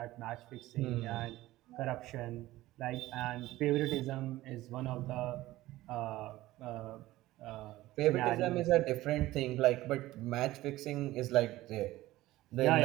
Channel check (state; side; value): quieter; left; 16.8 dB